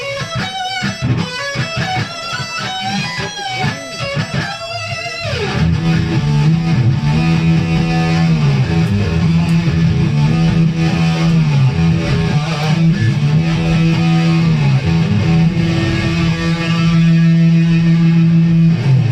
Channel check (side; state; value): both; identical; correlation 1.00